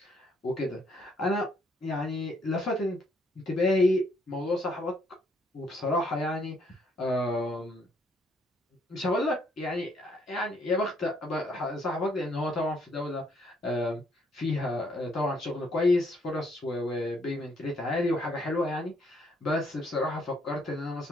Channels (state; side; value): normal; both; correlation 0.69